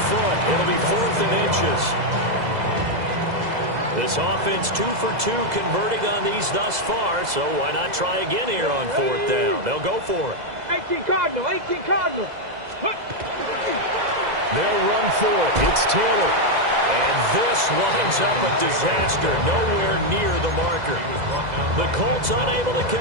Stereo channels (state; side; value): late; left; 2.0 ms